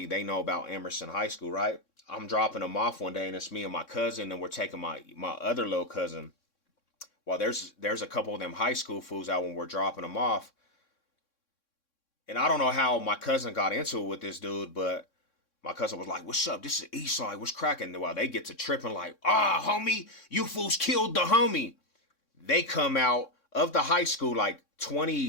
they know about Emerson High School, right? I'm dropping them off one day, and it's me and my cousin, and we're taking my other little cousin. Well, there's a couple of them high school fools out when we're dropping them off, and I don't know how my cousin got into it with this dude, but my cousin was like, "What's up? This is Eastside. What's cracking?" While they get to tripping, like, "Ah, homie, you fools killed the homie." They come out of the high school like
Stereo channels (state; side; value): late; right; 3.6 ms